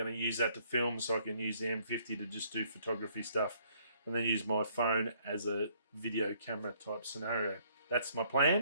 to use that to film, so I can use the M50 to just do photography stuff, and then use my phone as a video camera type scenario. That's my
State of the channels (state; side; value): inverted; both; correlation -0.65